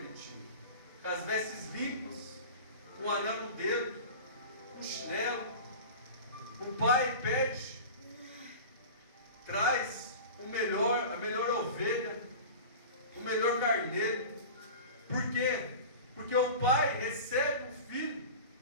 tinha. Com as vestes limpas, com o anel no dedo, o chinelo. O Pai pede, traz a melhor ovelha, o melhor carneiro. Por quê? Porque o pai recebe o filho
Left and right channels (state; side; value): inverted; both; correlation -0.35